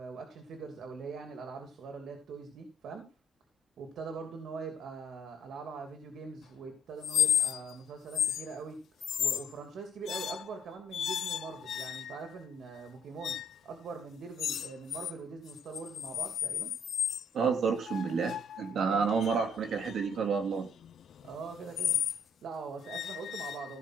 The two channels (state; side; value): normal; both; correlation 0.67